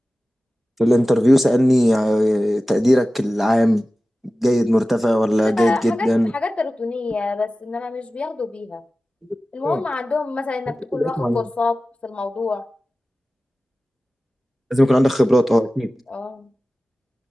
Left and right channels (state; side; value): normal; both; correlation 0.96